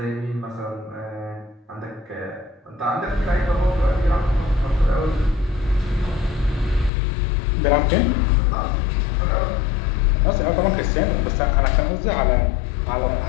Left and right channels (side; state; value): right; drops out; at 6.9 s